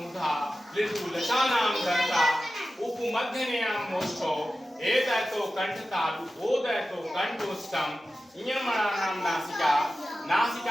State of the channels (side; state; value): both; normal; correlation 0.94